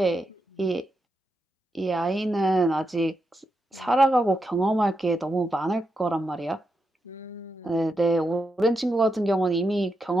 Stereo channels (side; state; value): both; normal; correlation 0.85